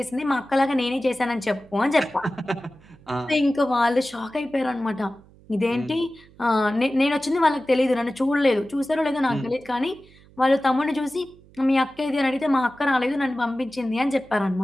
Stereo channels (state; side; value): noise; right; hum, 26 dB below the sound